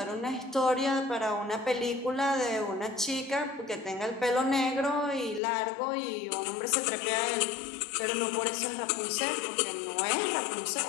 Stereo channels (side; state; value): right; drops out; at 5.4 s